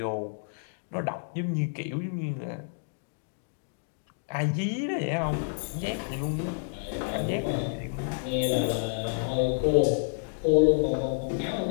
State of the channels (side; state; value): right; silent; digital silence